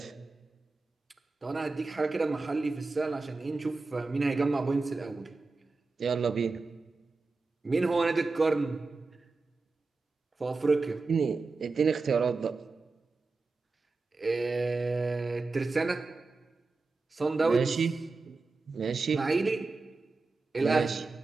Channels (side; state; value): left; quieter; 3.8 dB